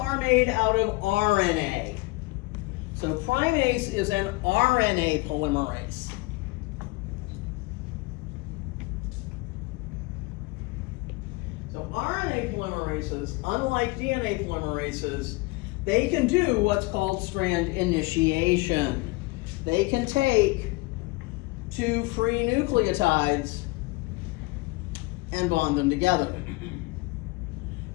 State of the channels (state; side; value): quieter; right; 23.7 dB